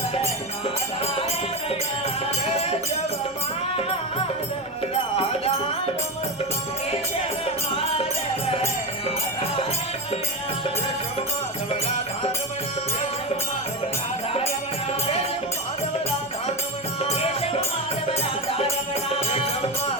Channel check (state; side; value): normal; both; correlation 0.18